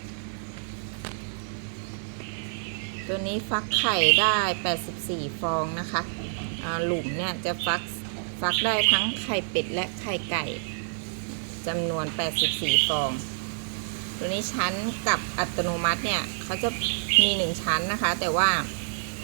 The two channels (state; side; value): silent; left; 60 dB below the other